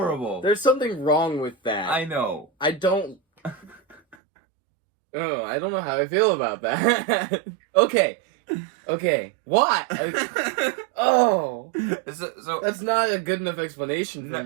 There's something wrong with that. I know. I don't know how I feel about that. Okay. What? So that's not a good enough explanation for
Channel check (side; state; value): left; drops out; at 4.2 s